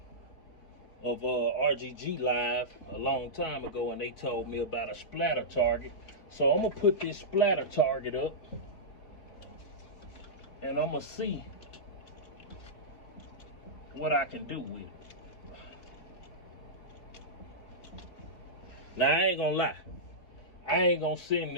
of RGG Live a long time ago, and they told me about a splatter target. So I'm gonna put this splatter target up, and I'm gonna see what I can do with it. Now, I ain't gonna lie. I ain't gonna send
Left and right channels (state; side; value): late; right; 4.2 ms